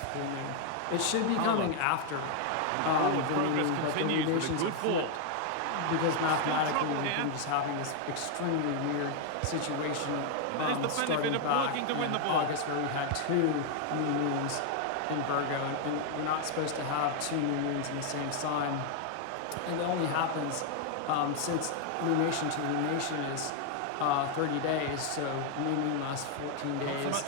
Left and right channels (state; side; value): different; both; correlation 0.00